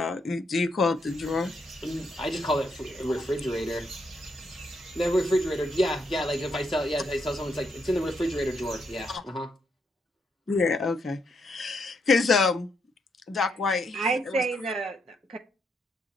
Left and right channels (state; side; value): normal; both; correlation 0.78